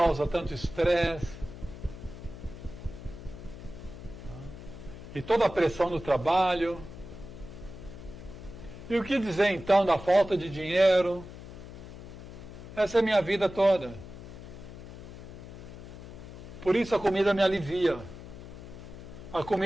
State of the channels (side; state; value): left; noise; hum, 13 dB below the sound